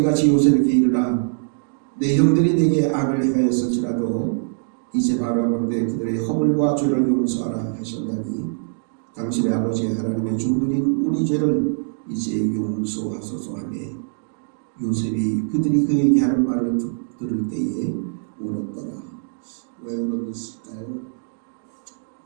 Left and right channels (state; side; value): silent; left; digital silence